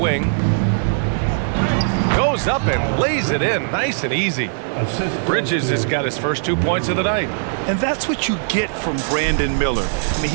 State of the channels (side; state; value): left; silent; digital silence